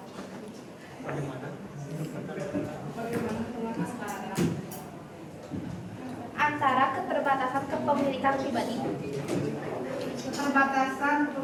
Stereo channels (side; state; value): both; identical; correlation 1.00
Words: Antara keterbatasan kepemilikan pribadi. Keterbatasan